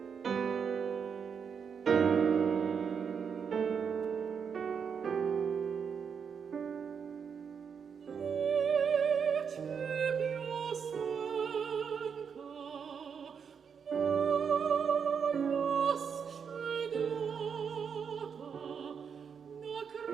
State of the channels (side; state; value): left; quieter; 6.7 dB